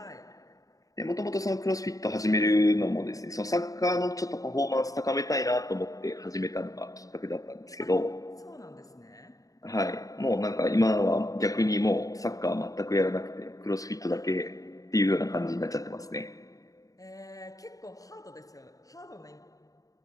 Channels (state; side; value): late; right; 0.17 ms